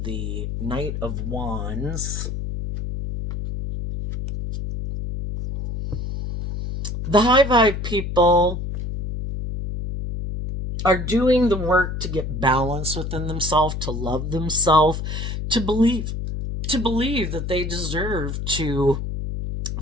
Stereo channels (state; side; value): noise; left; hum, 4 dB below the sound